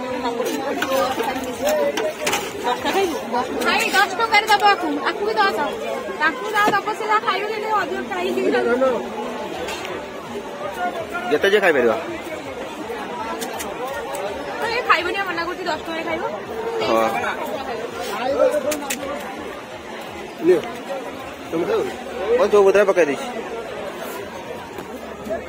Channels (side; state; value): both; identical; correlation 1.00